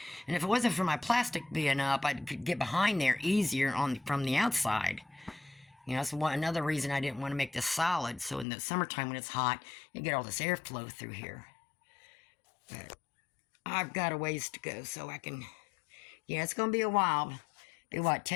And if it wasn't for my plastic being up, I could get behind there easier from the outside. You know, that's another reason I didn't want to make this solid. So in the summertime when it's hot, you get all this airflow through here. But I've got a ways to go so I can... Yeah, it's going to be a while. Be what,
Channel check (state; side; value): drops out; right; at 8.5 s